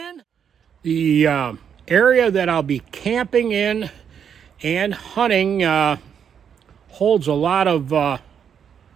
The area that I'll be camping in and hunting holds a lot of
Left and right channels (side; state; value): left; quieter; 7.9 dB